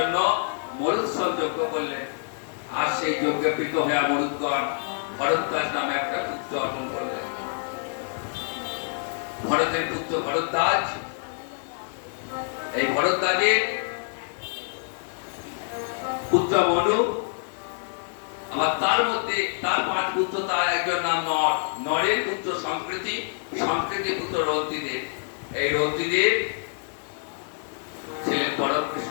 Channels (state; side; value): silent; right; digital silence